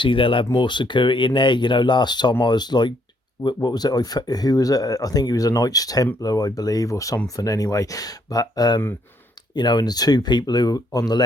they'll have more security in there. Last time I was like, what was it? Who was it? I think he was a Knights Templar, I believe, or something anyway. But, and the two people who were on the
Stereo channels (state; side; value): normal; both; correlation 0.70